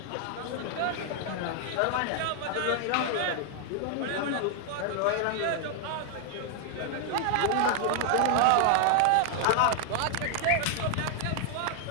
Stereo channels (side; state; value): both; different; correlation 0.00